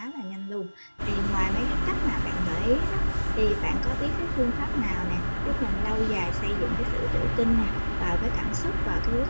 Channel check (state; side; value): inverted; both; correlation -1.00